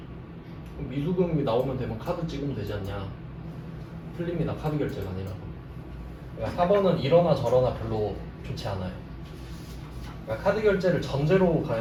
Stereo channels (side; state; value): both; identical; correlation 1.00